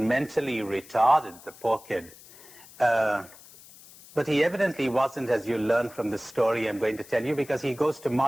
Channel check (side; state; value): left; noise; hiss, 21 dB below the sound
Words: retarded, the poor kid. But he evidently wasn't, as you learn from the story I'm going to tell you, because he goes to